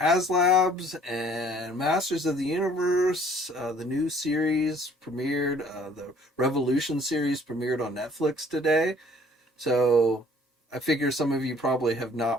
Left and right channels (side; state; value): both; normal; correlation 0.57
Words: and Masters of the Universe, the new series premiered. The Revolution series premiered on Netflix today. So I figure some of you probably have